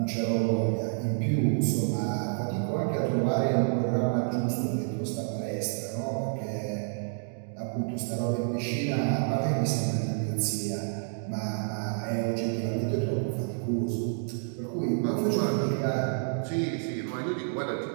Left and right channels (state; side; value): silent; left; digital silence